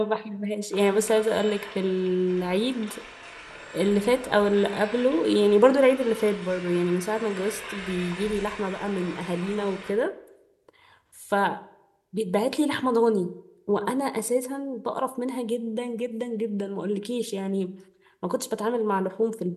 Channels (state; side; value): identical; both; correlation 1.00